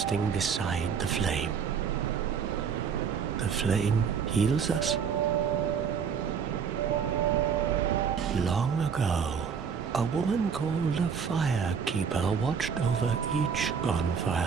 beside the flame. The flame heals us. Long ago, a woman called a firekeeper watched over each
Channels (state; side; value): quieter; left; 6.6 dB